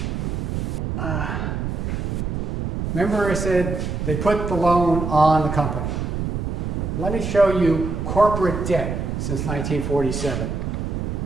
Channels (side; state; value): right; noise; rumble, 2 dB below the sound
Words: remember I said they put the loan on the company. Let me show you corporate debt since 1947,